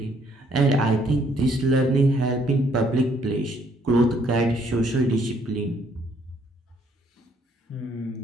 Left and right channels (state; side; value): normal; both; correlation 0.66